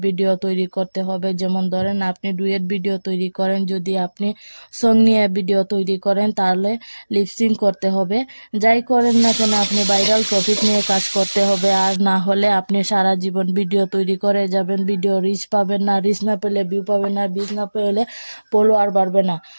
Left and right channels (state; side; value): inverted; both; correlation -1.00